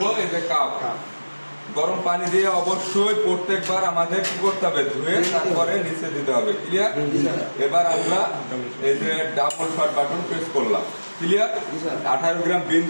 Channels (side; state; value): both; inverted; correlation -1.00